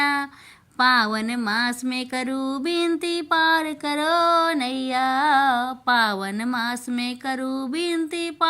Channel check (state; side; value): identical; both; correlation 1.00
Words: पावन मास में करूँ विनती पार करो नैया। पावन मास में करूँ विनती